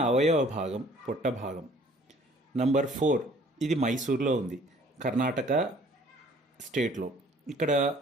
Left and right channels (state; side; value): normal; both; correlation 0.55